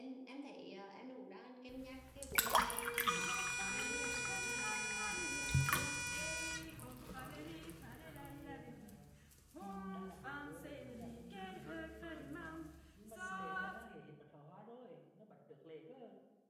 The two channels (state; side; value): identical; both; correlation 1.00